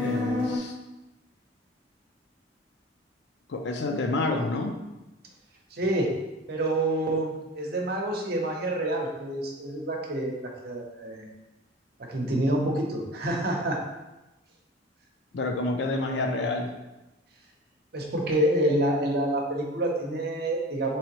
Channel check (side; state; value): both; normal; correlation 0.37